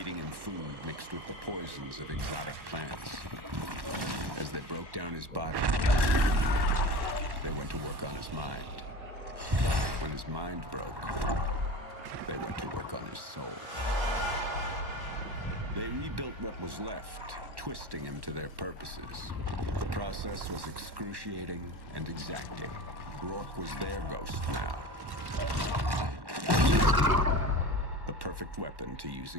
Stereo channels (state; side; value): late; left; 1.1 ms